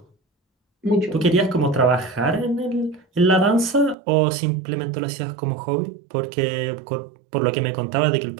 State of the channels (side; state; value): left; drops out; at 4.0 s